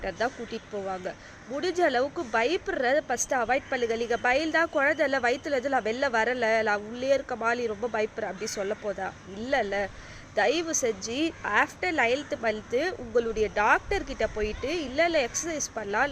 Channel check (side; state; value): both; identical; correlation 1.00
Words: தான் கூட்டிகிட்டு போவாங்க. முடிஞ்ச அளவுக்கு பயப்படுறத ஃபஸ்ட்டு அவாய்ட் பண்ணுங்க. நீங்கள் பயந்தா குழந்தைல வயிற்றுலேருந்து நான் வெளில வரலை, நான் உள்ளே இருக்க மாதிரி ரொம்ப பயப்படுறேன் அப்படி சொல்ல போதா? இல்லைல்ல. தயவு செஞ்சு ஆஃப்டர் 9th மந்த்து உங்களுடைய டாக்டர்கிட்ட போயிட்டு இல்லை எக்ஸசைஸ் பண்ணலாம்,